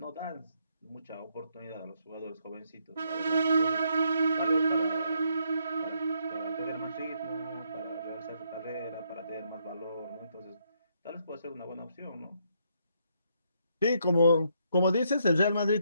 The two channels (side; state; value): both; inverted; correlation -0.74